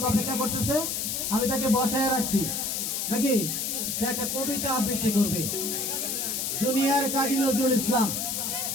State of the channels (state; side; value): noise; left; hiss, 1 dB below the sound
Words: অপেক্ষা করতেছে, আমি তাকে বসায় রাখছি নাকি সে একটা কবিতা আবৃত্তি করবে। জুনিয়র কাজী নজরুল ইসলাম।